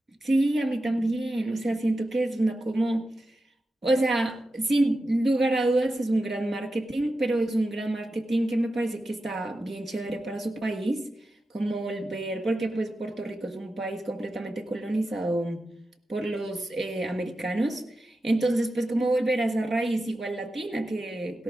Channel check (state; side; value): normal; both; correlation 0.91